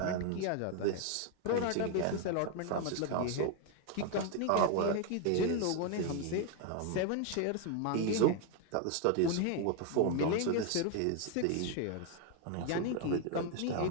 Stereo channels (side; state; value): both; different; correlation 0.01